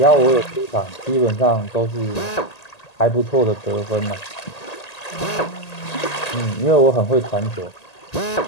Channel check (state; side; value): late; right; 1.8 ms